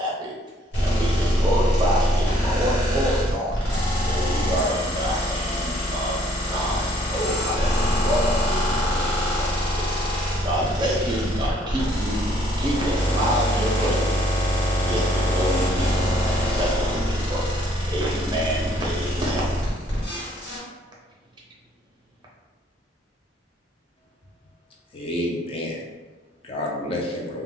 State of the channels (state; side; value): normal; both; correlation 0.63